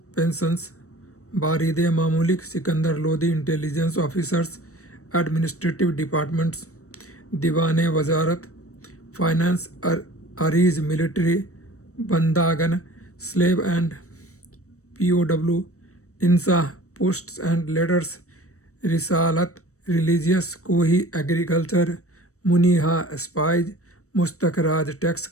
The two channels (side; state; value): right; late; 0.65 ms